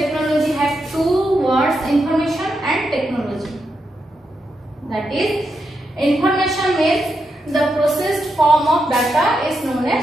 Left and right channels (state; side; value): normal; both; correlation 0.84